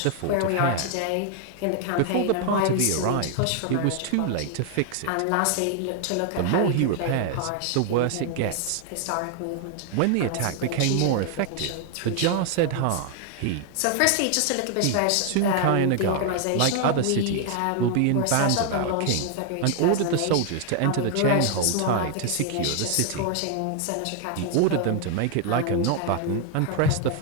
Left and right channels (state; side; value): different; both; correlation 0.00